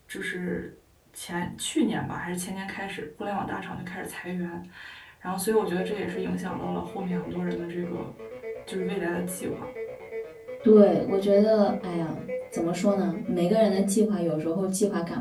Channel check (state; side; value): identical; both; correlation 1.00